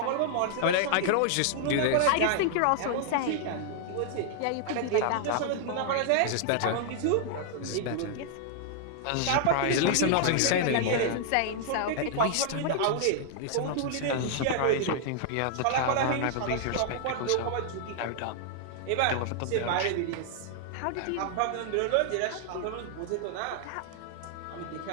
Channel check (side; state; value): both; different; correlation -0.01